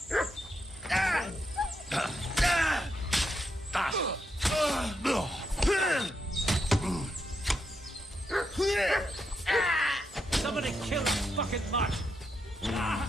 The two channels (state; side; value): normal; both; correlation 0.82